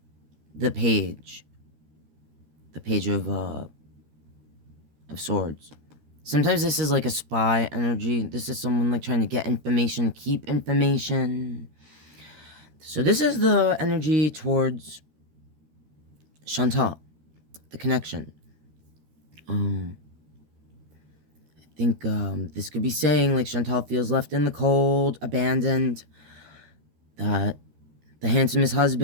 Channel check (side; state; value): left; late; 13 ms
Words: The Page of Swords. Sometimes this is like a spy energy. This is someone like trying to get information, keep information. So this is the energy towards Chantal, the connection. I think this could be saying like Chantal feels left in the cold, abandoned, that the handsomest